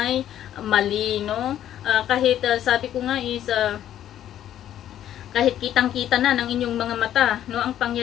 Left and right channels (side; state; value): right; quieter; 11.3 dB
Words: mali, no? Kahit sabi ko nga is kahit kitang-kita na ng inyong mga mata, no, ang